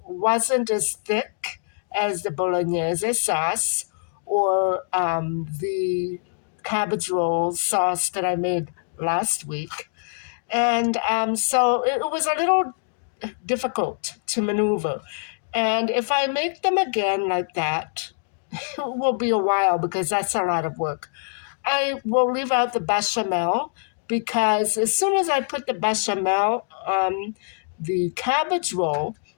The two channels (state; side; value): silent; right; digital silence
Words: wasn't as thick as the bolognese sauce or the cabbage roll sauce that I made last week. And so it was a little difficult to maneuver. And if I make them again like that, it will be a while because that's a lot of work. I will leave out the bechamel because as soon as I put the bechamel on the cabbage roll,